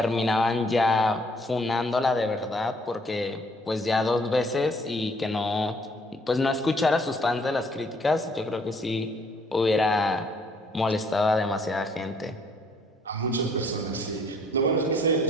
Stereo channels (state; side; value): normal; both; correlation 0.64